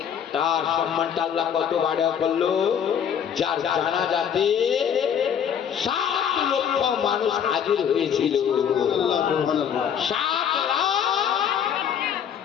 তার সম্মানটা আল্লাহ কত বাড়া করলো। যার জানাজাতে 7 লক্ষ মানুষ হাজির হয়েছিল। 7 লাখ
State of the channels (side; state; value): right; quieter; 8.3 dB